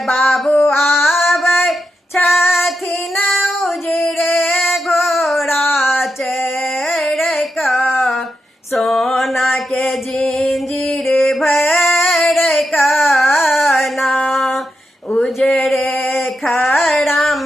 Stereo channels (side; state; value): both; normal; correlation 0.87